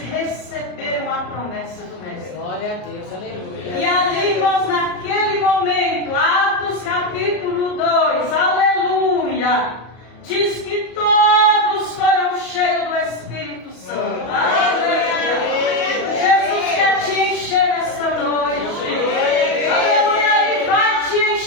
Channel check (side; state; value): right; late; 34 ms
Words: a promessa do Mestre. Glória a Deus, aleluia. E ali, irmãos, naquele momento, Atos capítulo 2, aleluia, diz que todos foram cheios do Espírito Santo. Aleluia. Jesus quer te encher nesta noite. Aleluia, Ele vai te